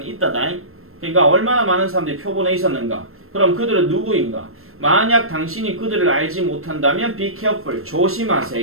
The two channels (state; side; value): late; left; 0.62 ms